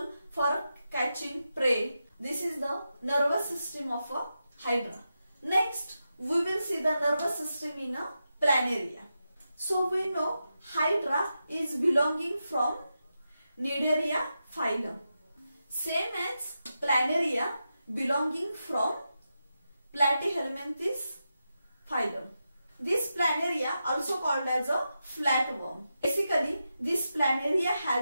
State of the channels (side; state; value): both; inverted; correlation -0.89